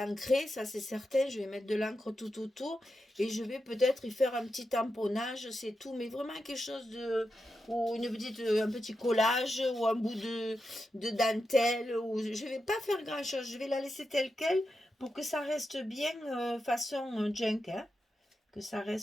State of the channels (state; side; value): normal; both; correlation 0.88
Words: ça c'est certain. Je vais mettre de l'encre tout autour et je vais peut-être y faire un petit tamponnage, c'est tout, mais vraiment quelque chose de, ou un petit collage ou un bout de dentelle. Ou je vais pas faire grand chose, je vais la laisser telle quelle pour que ça reste bien façon junk, hein, que ça